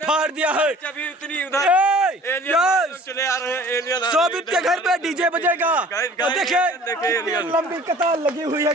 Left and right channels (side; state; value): both; normal; correlation 0.48